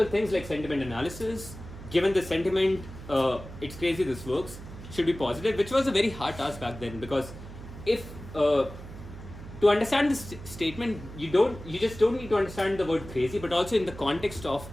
things like sentiment analysis. Given the sentiment, it's crazy this works, should be positive, which was a very hard task back then, because if to understand this statement, you just don't need to understand the word crazy, but also in the context of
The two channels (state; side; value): noise; right; hum, 13 dB below the sound